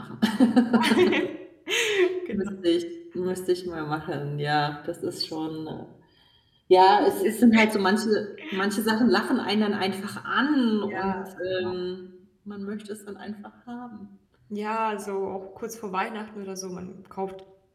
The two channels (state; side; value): identical; both; correlation 1.00